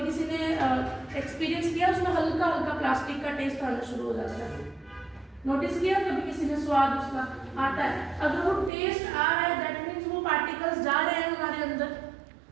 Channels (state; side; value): drops out; left; at 8.7 s